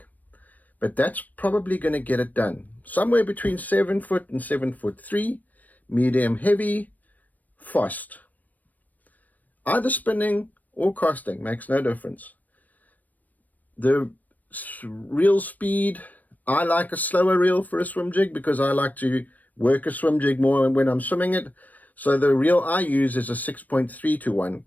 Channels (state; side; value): late; right; 0.080 ms